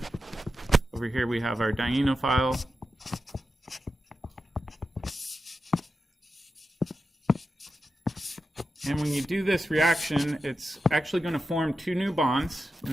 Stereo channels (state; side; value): normal; both; correlation 0.90